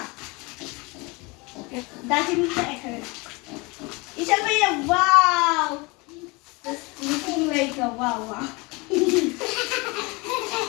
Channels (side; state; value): right; quieter; 26.5 dB